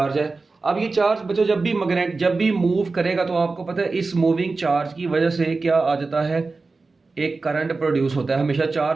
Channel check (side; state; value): left; quieter; 3.9 dB